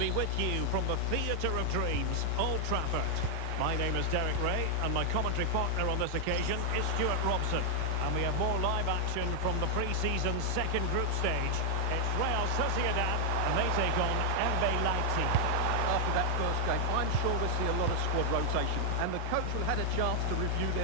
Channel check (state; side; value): different; both; correlation 0.00